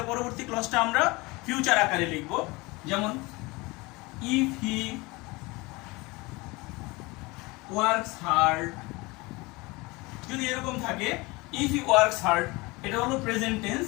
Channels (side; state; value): right; quieter; 23.9 dB